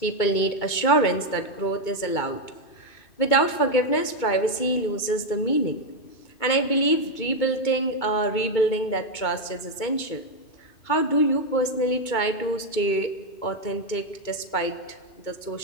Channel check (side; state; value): right; late; 2.2 ms